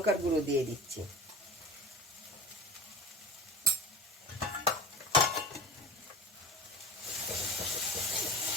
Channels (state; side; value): normal; both; correlation 0.34